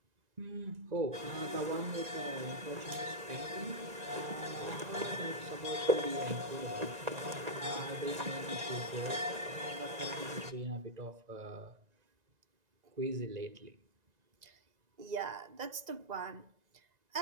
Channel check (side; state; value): left; late; 2.0 ms